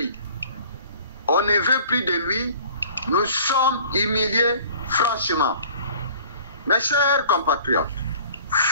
On ne veut plus de lui. Nous sommes humiliés franchement. Mes chers compatriotes,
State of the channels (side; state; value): both; inverted; correlation -0.49